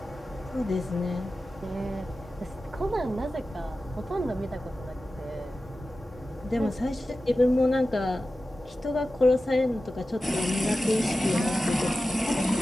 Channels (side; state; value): both; normal; correlation 0.94